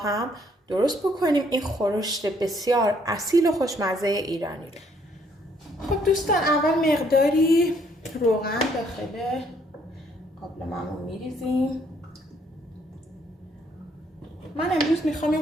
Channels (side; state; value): both; normal; correlation 0.67